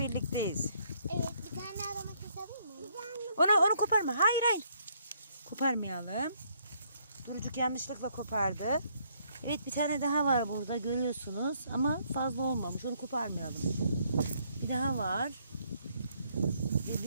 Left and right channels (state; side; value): inverted; both; correlation -0.69